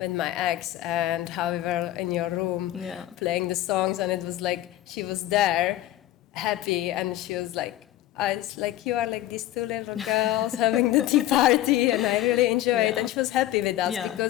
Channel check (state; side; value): quieter; right; 14.2 dB